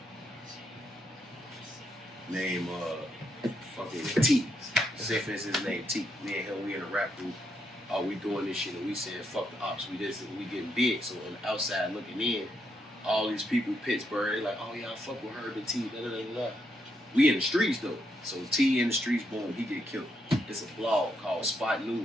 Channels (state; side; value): normal; both; correlation 0.79